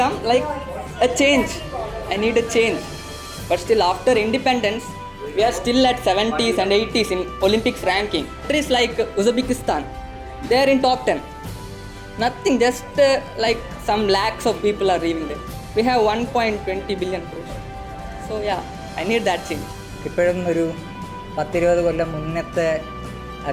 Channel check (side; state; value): both; identical; correlation 1.00